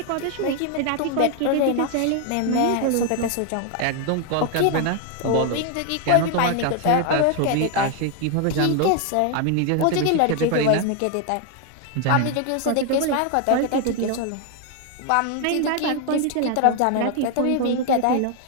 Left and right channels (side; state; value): both; different; correlation 0.01